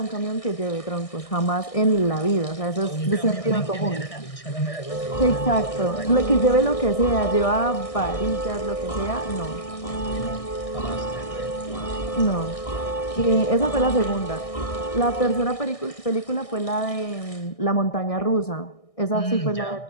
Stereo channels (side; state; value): right; late; 1.6 ms